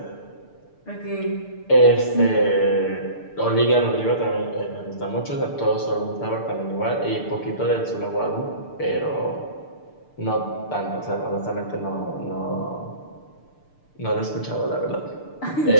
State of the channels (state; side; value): late; right; 6.8 ms